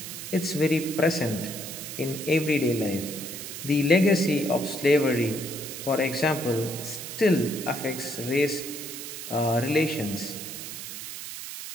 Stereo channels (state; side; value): noise; right; hiss, 9 dB below the sound